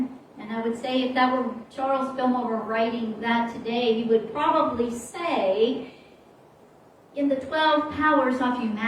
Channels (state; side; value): identical; both; correlation 1.00